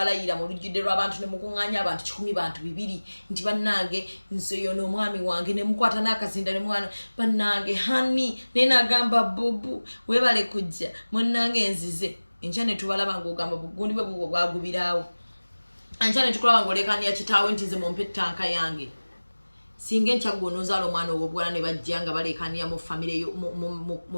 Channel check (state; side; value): inverted; both; correlation -1.00